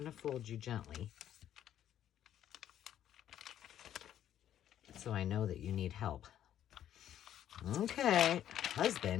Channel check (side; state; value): right; quieter; 10.9 dB